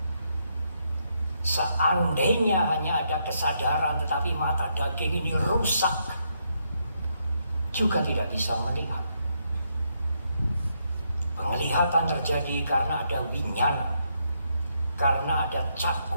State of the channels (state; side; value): inverted; both; correlation -0.77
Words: Seandainya hanya ada kesadaran tetapi mata daging ini rusak, juga tidak bisa melihat. Penglihatan terjadi karena ada winyana, karena ada